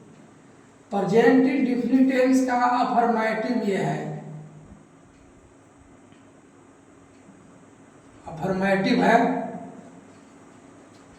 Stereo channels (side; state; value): both; identical; correlation 1.00